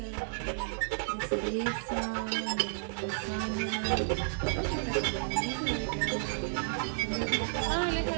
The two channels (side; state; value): left; silent; digital silence